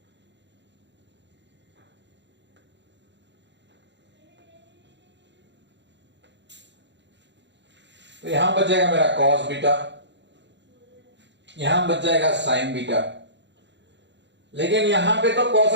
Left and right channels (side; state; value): left; late; 0.52 ms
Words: तो यहां बच जाएगा मेरा कॉस बीटा, यहां बच जाएगा साइन बीटा, लेकिन यहां पे तो कॉस